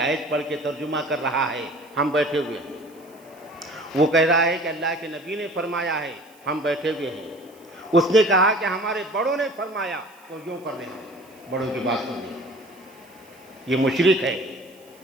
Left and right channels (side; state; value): right; noise; hiss, 28 dB below the sound